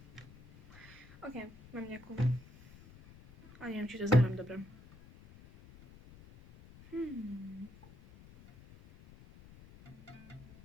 Ok, mám nejakú. Ale neviem, či to zahrám dobre.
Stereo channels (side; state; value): left; noise; rumble, 20 dB below the sound